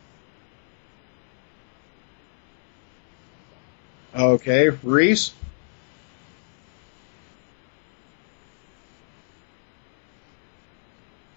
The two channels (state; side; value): silent; right; digital silence